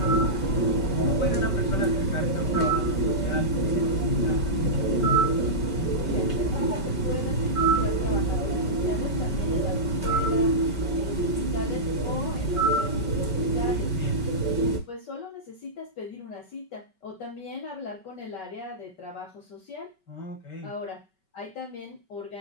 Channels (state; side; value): late; right; 5.3 ms